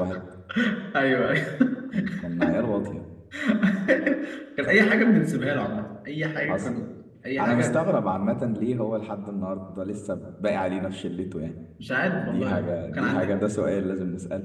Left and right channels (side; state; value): both; identical; correlation 1.00